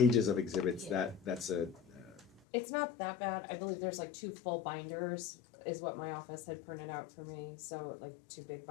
of exhibits, Yeah. that's a, It's not that bad. I believe there's like 2 full binders is what my office had printed out for me. So like 2 big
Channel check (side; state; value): right; drops out; at 2.4 s